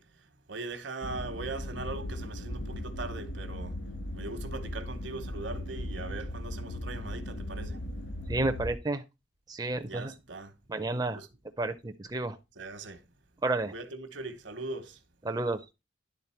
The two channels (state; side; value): normal; both; correlation 0.55